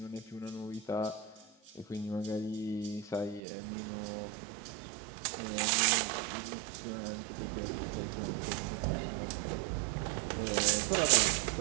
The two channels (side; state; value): left; drops out; at 3.4 s